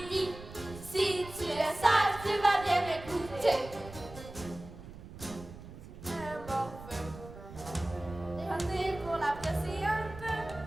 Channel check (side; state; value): right; noise; rumble, 15 dB below the sound